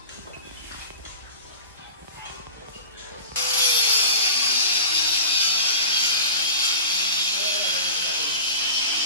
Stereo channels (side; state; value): both; inverted; correlation -0.32